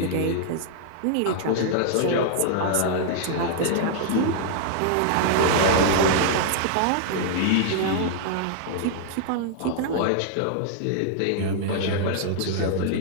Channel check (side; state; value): both; different; correlation -0.01